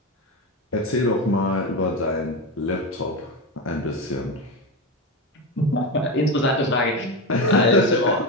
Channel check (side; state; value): both; normal; correlation 0.17